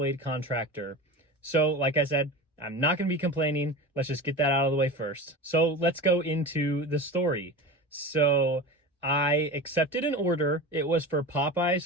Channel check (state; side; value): normal; both; correlation 0.30